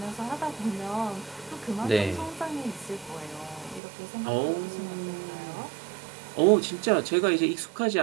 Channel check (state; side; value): drops out; left; at 3.8 s